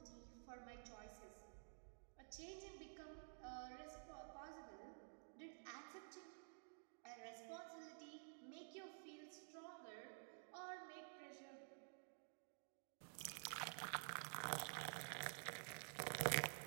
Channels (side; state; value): left; silent; digital silence